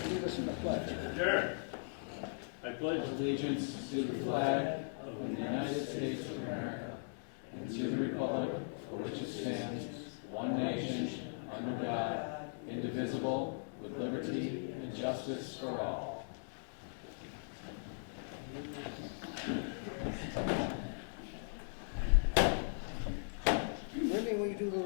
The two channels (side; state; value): right; silent; digital silence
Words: lead us in the pledge? Sure. I pledge allegiance to the flag of the United States of America and to the republic for which it stands, one nation, under God, indivisible, with liberty and justice for all. Wendy, will you do the